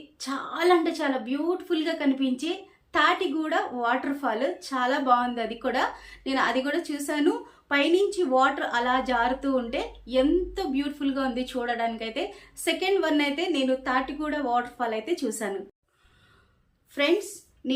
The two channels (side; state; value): both; identical; correlation 1.00